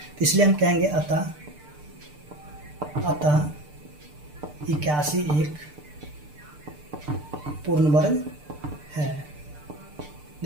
इसलिए हम कहेंगे अतः 81 एक पूर्ण वर्ग है।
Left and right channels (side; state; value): left; late; 6.7 ms